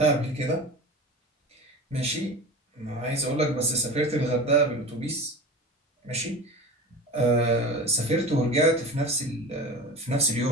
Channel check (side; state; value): both; normal; correlation 0.32